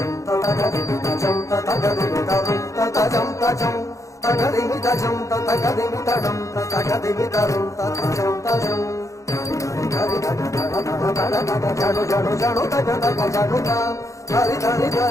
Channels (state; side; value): late; right; 0.15 ms